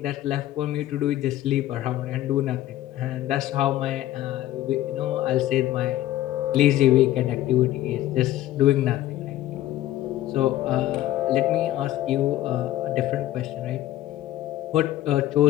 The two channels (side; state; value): right; quieter; 14.1 dB